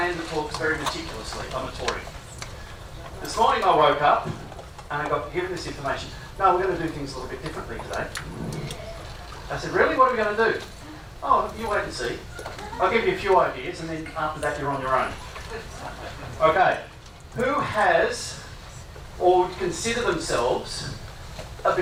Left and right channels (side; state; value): both; identical; correlation 1.00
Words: the talks very meticulously. I'm a Tory. This morning I woke up and I got given this information. No, we're going to do things a little bit differently today. I said, really? What are we going to do? Oh, you wait and see. I'll give you a few ideas and then after that you're on your own. Okay. Who has or would consider themselves a